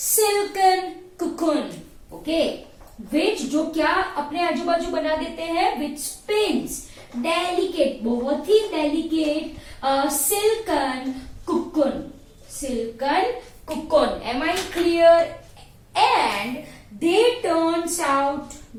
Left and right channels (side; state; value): both; identical; correlation 1.00